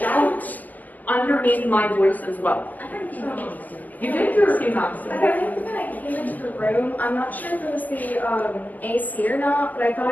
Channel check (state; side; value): late; right; 0.081 ms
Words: underneath my voice as well. You did hear a few knocks. I think when I came into the room, I'm not sure if it was the AC or not, but I thought